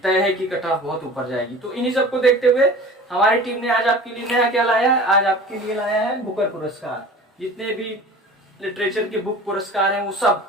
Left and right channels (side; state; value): both; normal; correlation 0.40